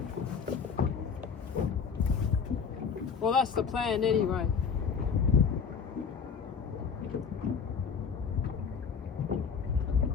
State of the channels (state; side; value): quieter; right; 6.2 dB